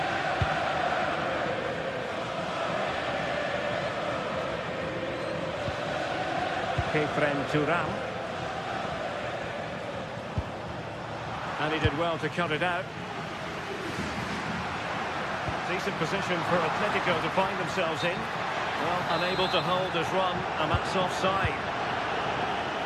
Turam. And he did well to cut it out. Decent position for Atletico to find themselves in. Well, unable to hold his run, and that's offside.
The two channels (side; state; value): both; identical; correlation 1.00